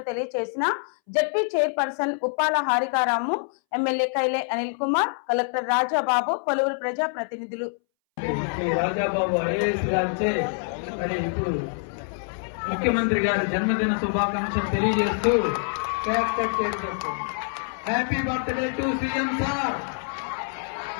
తెలియజేసిన ZP chairperson Uppala హారికారాము, MLA కైలే Anil Kumar, collector Rajababu, పలువురు ప్రజా ప్రతినిధులు. ముఖ్యమంత్రి గారి జన్మదిన శుభాకాంక్షలు తెలియజేస్తూ కేక్ కట్ చేస్తారు. Happy birthday to CM sir,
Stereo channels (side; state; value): right; silent; 61 dB below the other